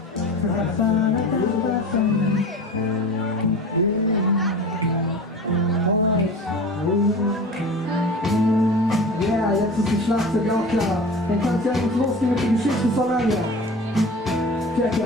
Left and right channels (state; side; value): normal; both; correlation 0.36